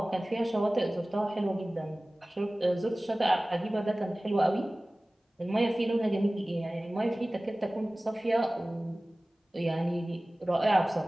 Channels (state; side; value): normal; both; correlation 0.98